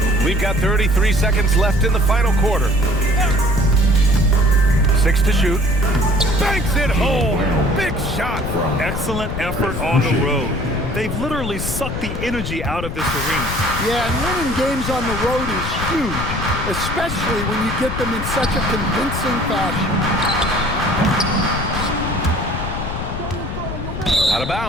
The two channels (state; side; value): noise; left; rumble, 5 dB below the sound